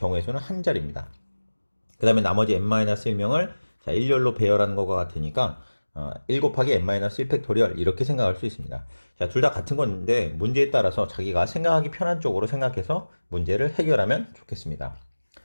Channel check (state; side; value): inverted; both; correlation -1.00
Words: 수는 한 자리입니다. 그 다음에 나머지 n-1명을 자, 일렬로 배열하는 것과 같으니까 1 곱하기 n-1 팩토리얼 이렇게 생각할 수 있습니다. 자, 둘 다 같은 건데 문제에 따라서 자기가 생각하기 편한 쪽으로 생각해서 문제를 해결하면 좋겠습니다.